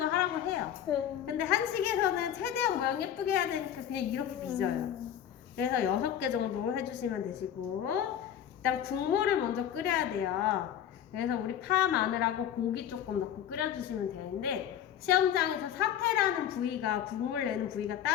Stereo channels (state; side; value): quieter; right; 10.0 dB